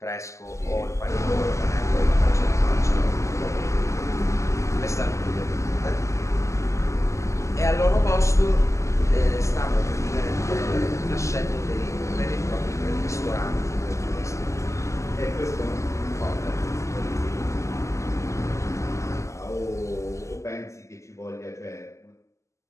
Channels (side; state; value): right; late; 0.14 ms